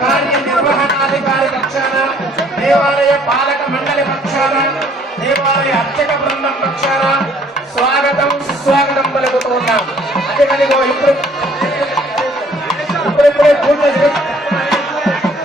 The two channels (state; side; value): normal; both; correlation 0.60